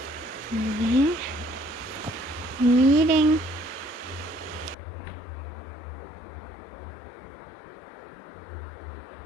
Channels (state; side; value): drops out; right; at 4.8 s